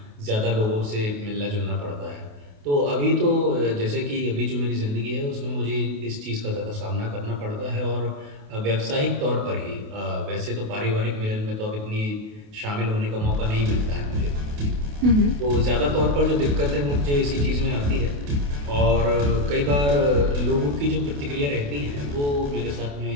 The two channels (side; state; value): left; late; 28 ms